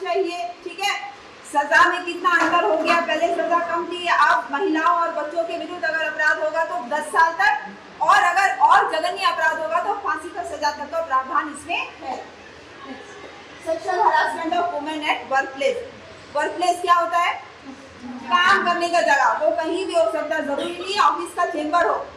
चाहिए, ठीक है। सजा में कितना अंतर हो गया, पहले सजा कम थी, अब महिलाओं और बच्चों के विरुद्ध अगर अपराध होगा तो 10 साल तक, और अगर और जघन्य अपराध होगा तो फांसी का सजा तक का प्रावधान इसमें है। Sexual harassment of women at workplace, workplace क्या होता है? काम करने का जगह, वो कहीं भी हो सकता है, जरूरी नहीं ऑफिस का चेंबर हो।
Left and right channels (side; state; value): both; identical; correlation 1.00